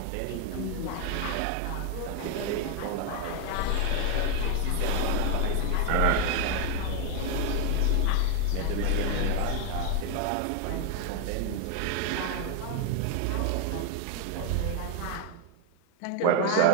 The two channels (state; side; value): different; both; correlation 0.01